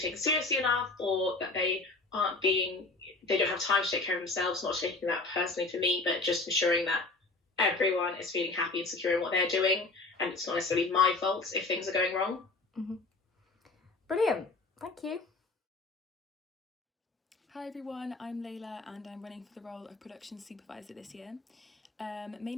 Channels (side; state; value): right; quieter; 3.5 dB